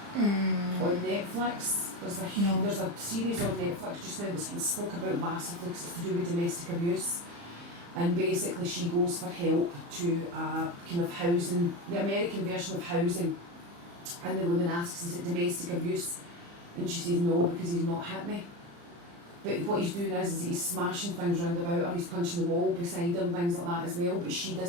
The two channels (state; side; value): late; left; 35 ms